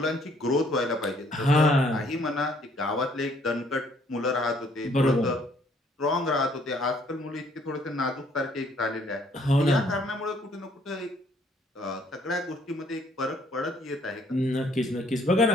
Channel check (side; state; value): both; normal; correlation 0.64